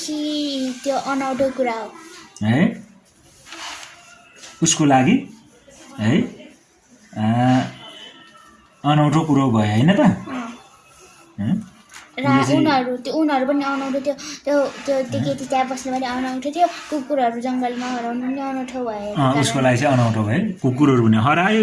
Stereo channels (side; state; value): both; identical; correlation 1.00